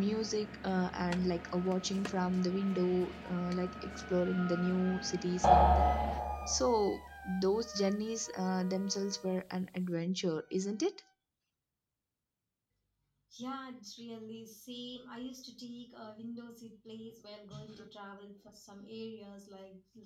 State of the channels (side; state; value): both; identical; correlation 1.00